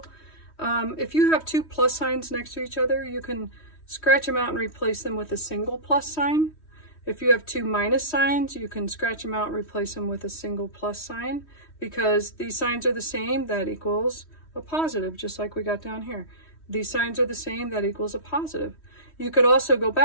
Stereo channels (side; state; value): right; late; 3.1 ms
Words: If you have two plus signs next to each other, you can scratch them out and replace them with a single plus sign. If you have two minus signs, you can scratch them out and replace them with a single plus sign. Because these signs are the same, that equals a positive, just like we got down here. These signs are the same, that equals a positive. You could also go